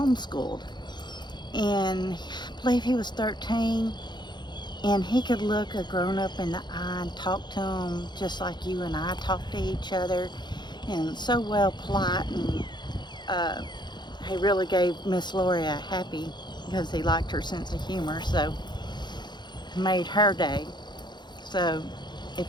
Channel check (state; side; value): late; right; 0.21 ms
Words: And I believe he was 13, and he could look a grown-up in the eye and talk to him just like you and I talk to each other, and so well polite, and he really gave Miss Lori a happy because he liked her sense of humor, so made her day. So